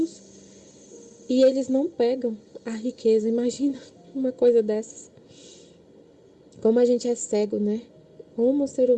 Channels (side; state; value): both; identical; correlation 1.00